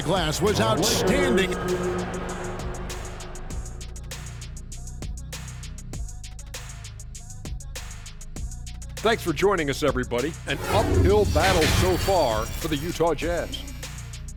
glass was outstanding. Thanks for joining us, everybody. An uphill battle so far for the Utah Jazz.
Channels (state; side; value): identical; both; correlation 1.00